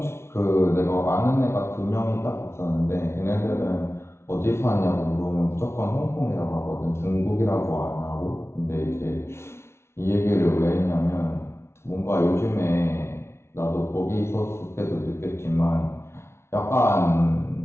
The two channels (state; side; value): late; right; 0.13 ms